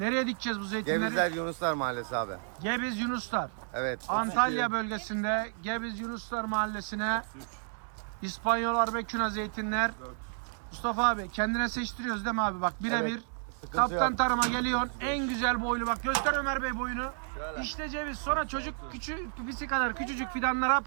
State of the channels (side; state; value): left; silent; digital silence